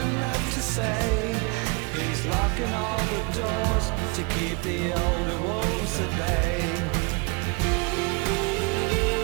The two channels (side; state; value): left; quieter; 29.7 dB